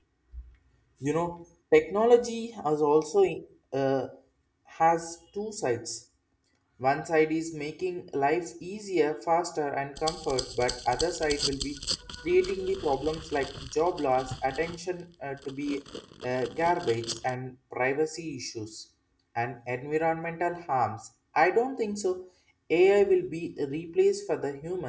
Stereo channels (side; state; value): both; identical; correlation 1.00